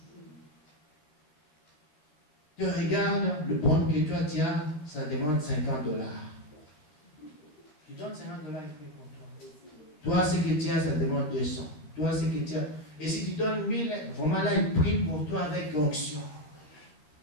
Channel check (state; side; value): late; right; 13 ms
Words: Tu regardes le bon que toi tu as, ça demande 50 $. Tu donnes 50 $, il fait pour toi. Toi, ce que tu as, ça demande 200. Toi, ce que tu as. Et si tu donnes 1000, vraiment là, il prie pour toi avec onction.